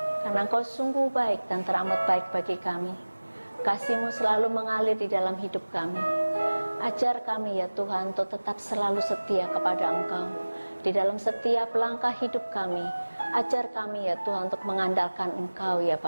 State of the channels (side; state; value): both; inverted; correlation -1.00